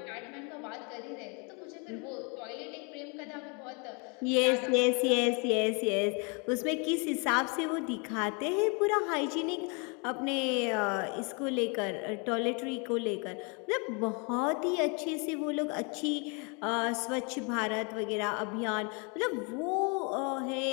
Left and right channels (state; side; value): quieter; right; 33.8 dB